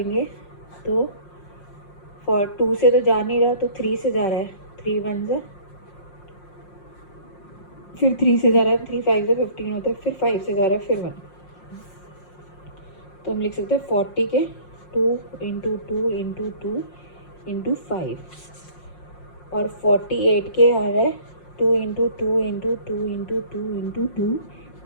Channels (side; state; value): right; late; 5.6 ms